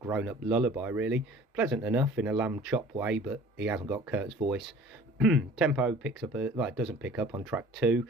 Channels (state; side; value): normal; both; correlation 0.47